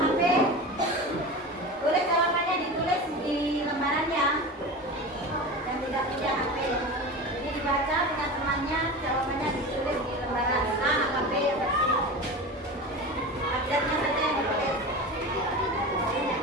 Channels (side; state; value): both; normal; correlation 0.29